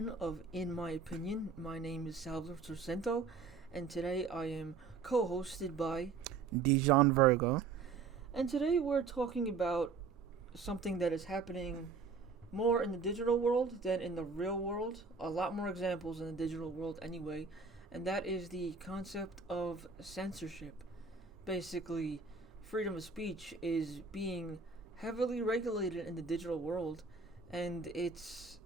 of In My Opinion. My name is Salvador Torcento, and today I am co-hosted by Dijon Virgo. And today we're talking about something that is happening more in the digital world than in the real world. A lot more examples in the digital world anyway, and that is the concept of censorship. Basically, freedom of speech is being heavily regulated in the digital world, and it's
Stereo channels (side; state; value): left; quieter; 4.9 dB